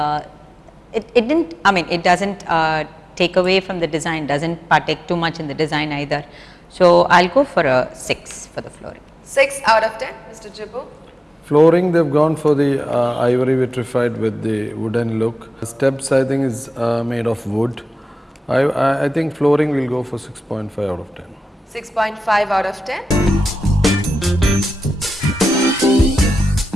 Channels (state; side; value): normal; both; correlation 0.94